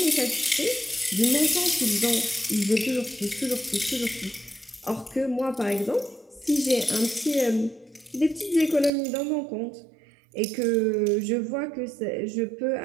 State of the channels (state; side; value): drops out; left; at 8.9 s